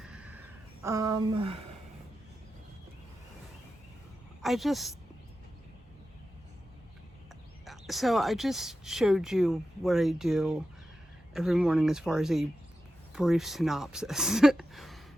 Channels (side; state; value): both; normal; correlation 0.91